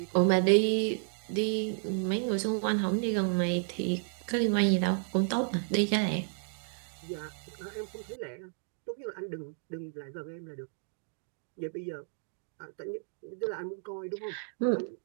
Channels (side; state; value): left; silent; 56 dB below the other